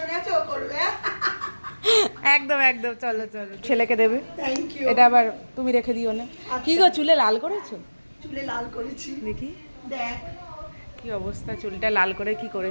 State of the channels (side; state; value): both; inverted; correlation -1.00